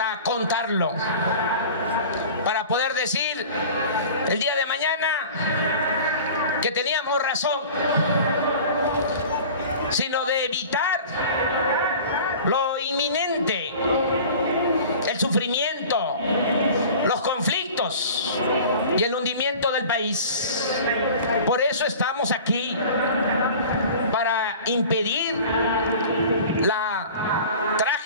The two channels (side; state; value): both; inverted; correlation -0.41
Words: contarlo, para poder decir el día de mañana que teníamos razón, sino de evitar lo inminente, el sufrimiento, los conflictos y el hundimiento del país. Por eso estamos aquí, para impedir la